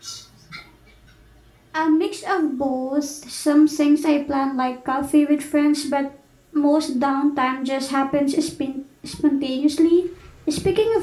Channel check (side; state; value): both; identical; correlation 1.00